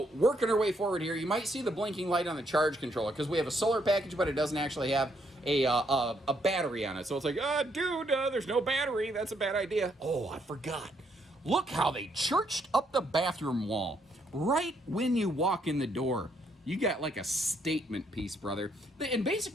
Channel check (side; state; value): both; normal; correlation 0.73